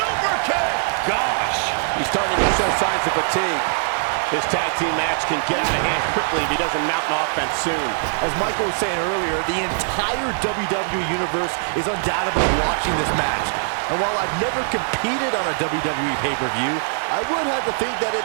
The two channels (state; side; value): silent; left; digital silence